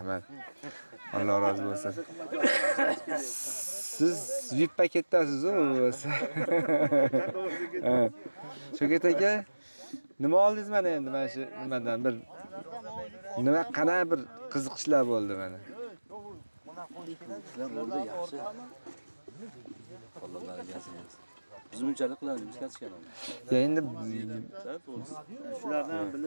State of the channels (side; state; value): both; inverted; correlation -1.00